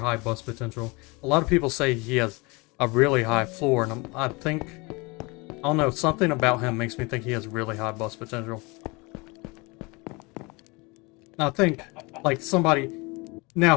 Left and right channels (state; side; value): quieter; right; 26.7 dB